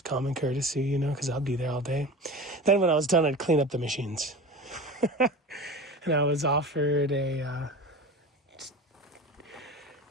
common courtesy, you know, because I'll be there all day. Then when I was done, I'd clean up the machines. And I was offered a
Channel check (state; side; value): normal; both; correlation 0.33